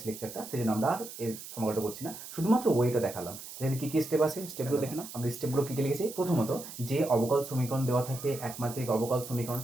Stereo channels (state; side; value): noise; right; hiss, 12 dB below the sound